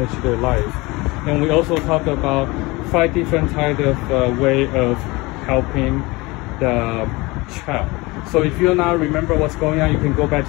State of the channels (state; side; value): quieter; right; 23.4 dB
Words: their life. And we also talked about 5 different types of way of helping the child. So if you now remember what's going on, you can go